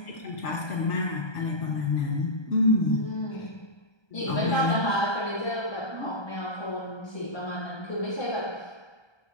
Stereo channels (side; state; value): right; late; 1.3 ms